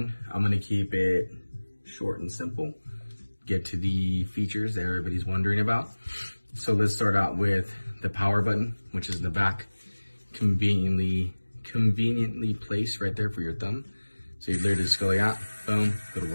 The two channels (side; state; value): both; inverted; correlation -1.00